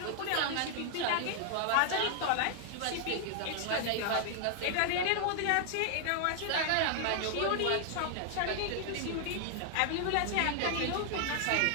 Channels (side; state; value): both; different; correlation 0.00